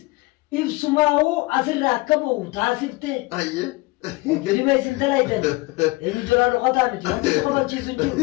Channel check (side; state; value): right; quieter; 22.3 dB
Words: ibsumaa'uu asirraa akka ba'u taasiftee Hayyee. filima isin dalaydan eenyu jolaa dhokataa miti wanti si qobachiisu hin jiru